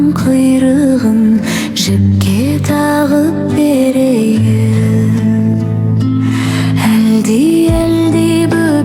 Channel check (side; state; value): both; identical; correlation 1.00